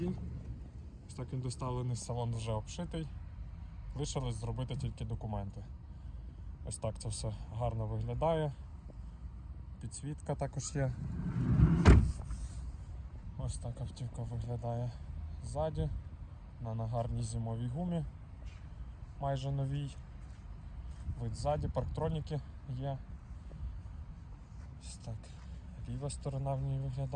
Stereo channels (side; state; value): both; identical; correlation 1.00